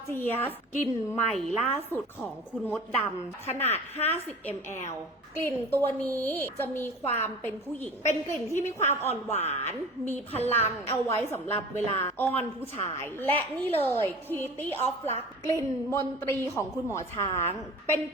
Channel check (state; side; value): normal; both; correlation 0.39